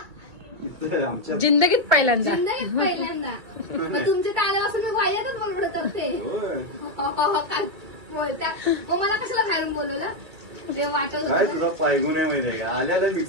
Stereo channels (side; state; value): left; late; 2.4 ms